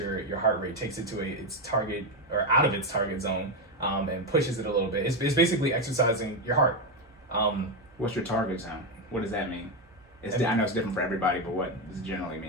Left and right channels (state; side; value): normal; both; correlation 0.09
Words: heart rate, takes it to its target or out of its target zone, and pushes it a little bit. It's basically exercising your heart. What's your target zone? What does that mean? I know it's different for everybody, but what does it generally